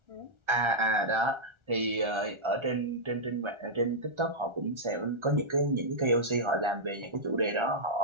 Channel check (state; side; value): late; left; 1.4 ms